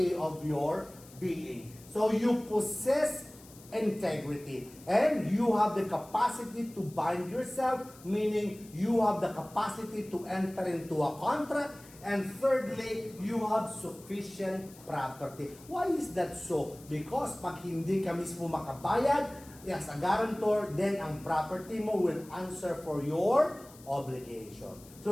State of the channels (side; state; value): left; noise; hiss, 22 dB below the sound